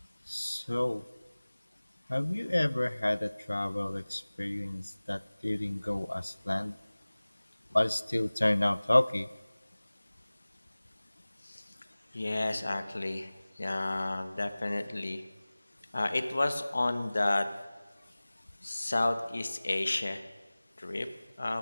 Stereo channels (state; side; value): inverted; both; correlation -0.99